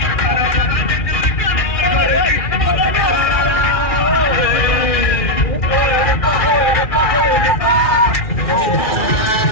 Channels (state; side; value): late; right; 2.4 ms